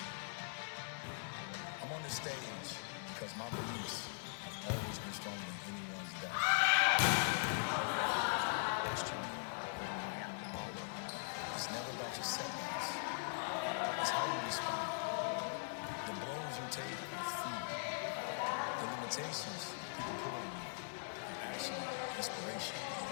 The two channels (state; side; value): silent; right; digital silence